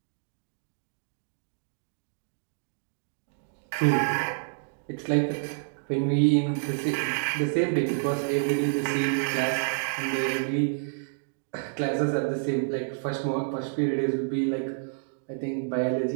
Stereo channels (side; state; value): left; silent; digital silence